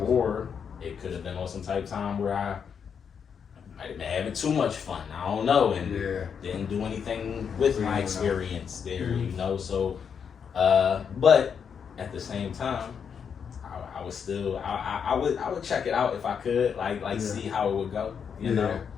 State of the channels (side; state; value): right; quieter; 7.0 dB